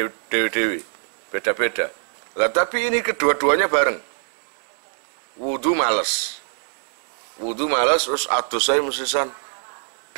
dewi-dewi beda-beda. Lah tapi ini kedua-duanya bareng. Wudu males terus adus saya mesisan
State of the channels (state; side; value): silent; left; digital silence